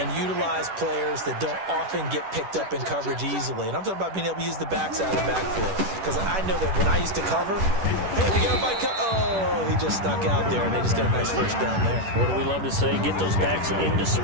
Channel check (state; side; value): late; left; 10 ms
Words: utilize players that don't often get picked up in coverage easily. And I'm talking about being able to use the backside of the backfield. Because I know that when I used to cover, hey, we got a bike. Oh, he just snuck out there, and they just got a nice first down there. What do we love to say? Get those backs into